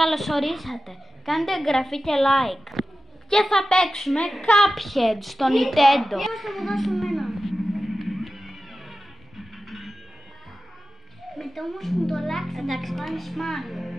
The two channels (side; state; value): both; normal; correlation 0.94